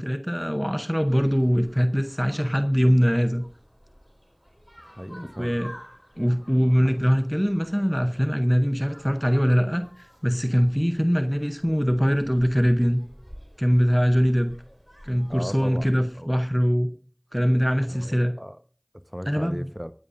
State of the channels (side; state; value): both; identical; correlation 1.00